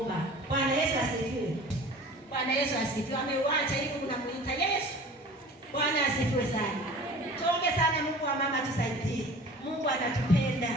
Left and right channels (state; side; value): normal; both; correlation 0.42